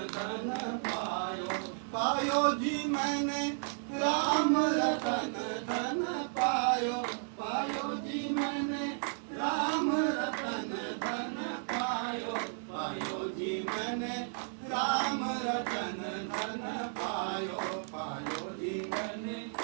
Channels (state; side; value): silent; left; digital silence